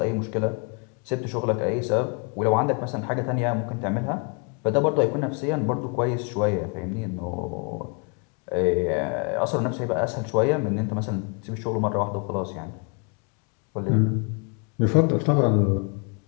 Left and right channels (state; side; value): quieter; right; 35.7 dB